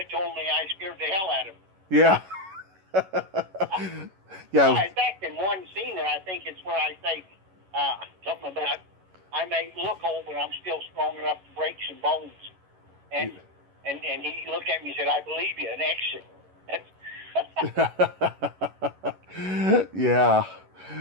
told me I scared the hell out of him. Yeah. Yeah. In fact, in one scene, and I think it's where I say something about I may look old, but I'm still strong enough to break some bones. And he looked at me and said, "I believe you." An exit. Yeah,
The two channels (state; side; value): late; left; 11 ms